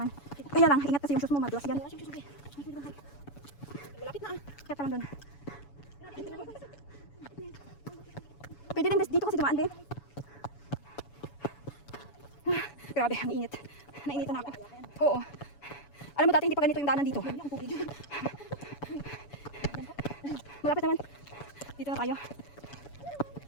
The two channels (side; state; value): right; late; 7.0 ms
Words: Kaya lang, ingat kasi yung sus mo, madulas yan. Malapit na. Kaya pa lang doon. Pwede din dito kasi dumaan din. Grabe, ang init. Nainitan na ako. Oo. Alam mo dati hindi pa ganito yung daanan dito. Malapit naman. Dito na tayo.